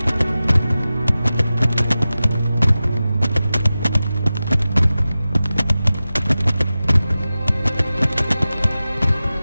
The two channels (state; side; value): inverted; both; correlation -0.95